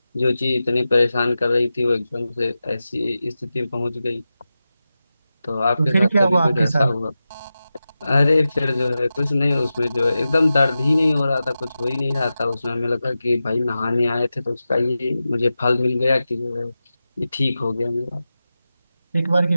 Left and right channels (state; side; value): inverted; both; correlation -0.93